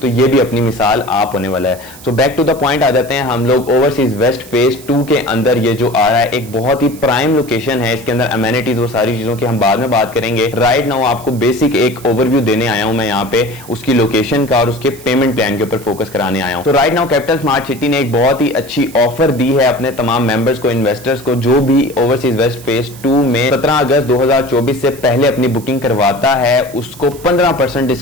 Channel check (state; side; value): noise; right; hiss, 19 dB below the sound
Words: तो ये भी अपनी मिसाल आप होने वाला है। So back to the point आ जाते हैं हम लोग। ओवरसीज वेस्ट फेज 2 के अंदर ये जो आ रहा है एक बहुत ही प्राइम लोकेशन है। इसके अंदर अमेनिटीज, वो सारी चीजों की हम बाद में बात करेंगे। राइट नाउ आपको बेसिक एक ओवरव्यू देने आया हूं मैं यहाँ पे, उसकी लोकेशन का और उसके पेमेंट प्लान के ऊपर फोकस कराने आया हूं। तो right now capital smart city ने एक बहुत ही अच्छी ऑफर दी है अपने तमाम मेंबर्स को, इन्वेस्टर्स को, जो भी ओवरसीज वेस्ट फेज 2 में 17 अगस्त 2024 से पहले अपनी बुकिंग करवाता है, उसको 15%